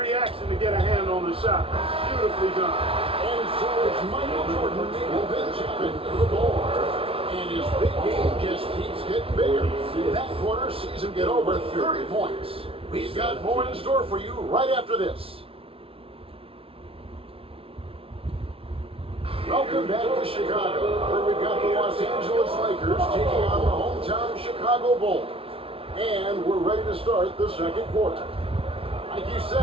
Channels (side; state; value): left; late; 0.26 ms